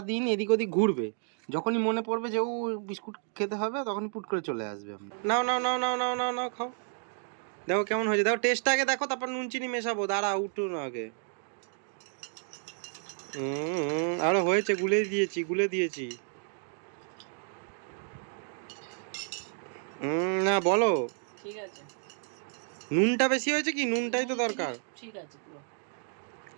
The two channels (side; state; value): left; silent; 57 dB below the other